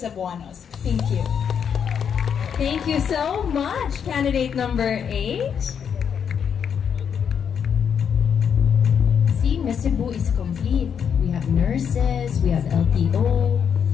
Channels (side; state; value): right; quieter; 7.6 dB